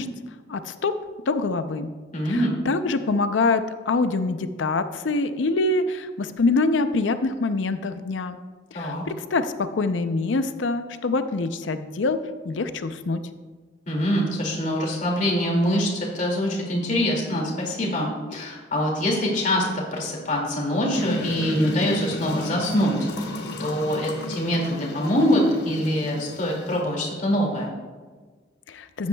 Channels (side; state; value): both; normal; correlation 0.44